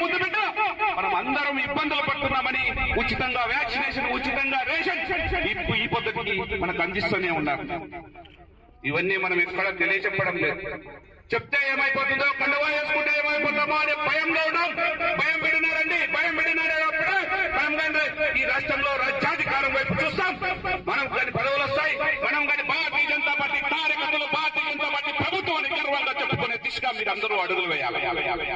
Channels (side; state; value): both; identical; correlation 1.00